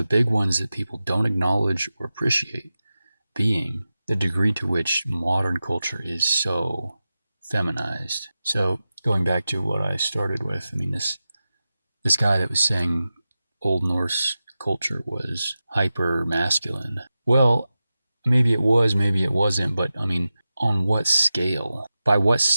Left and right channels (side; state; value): both; inverted; correlation -0.93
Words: big ones that people don't acknowledge or appreciate being the degree to which modern culture is so feminized. So going back to what I started with, I mean, this guy that was saying Old Norse culture was hyper masculine. Well, maybe it was, maybe it wasn't, but I mean, on what scale? By what